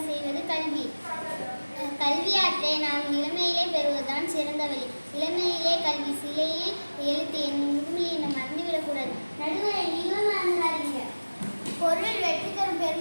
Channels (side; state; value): both; inverted; correlation -1.00